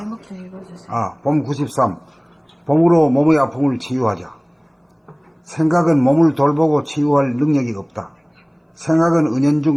좀 읽어주세요. 봄 93. 봄으로 몸의 아픔을 치유하자. 생각은 몸을 돌보고 치유할 능력이 없다. 생각은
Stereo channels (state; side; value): identical; both; correlation 1.00